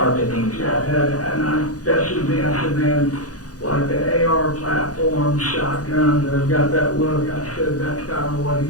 Yeah, and I tested me. I said, man, like the AR platform shotgun that's got that look. I said that's kind of what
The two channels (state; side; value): late; right; 0.67 ms